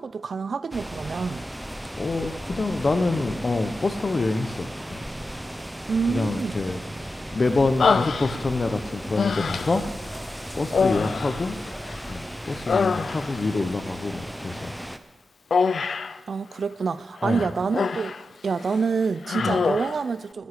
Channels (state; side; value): normal; both; correlation 0.90